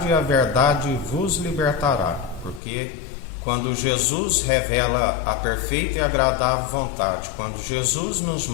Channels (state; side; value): drops out; right; at 2.6 s